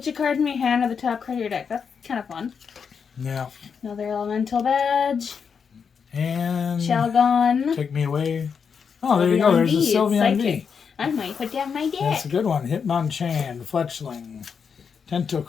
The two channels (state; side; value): quieter; right; 6.3 dB